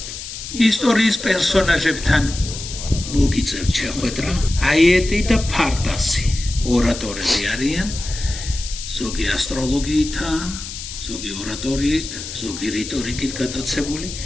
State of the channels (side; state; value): left; noise; hiss, 9 dB below the sound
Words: ისტორიის პერსონაჟებთან მოგიწევთ შეხვედრა, აიეტი და ფარტასი. ორატორები არიან, ზოგი ასტროლოგიითაა, ზოგი ორატორიით, ზოგი რიტორიკით გატაცებული,